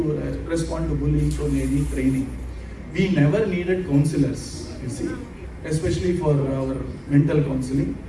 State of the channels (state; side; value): identical; both; correlation 1.00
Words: respond to bullying, so they need training. We never needed counselors, you see, especially for our mental counseling.